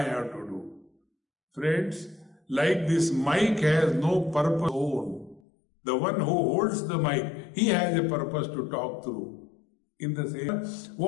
have to do. Friends, like this mic has no purpose own. The one who holds the mic, he has a purpose to talk through. In the same,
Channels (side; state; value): right; drops out; at 5.4 s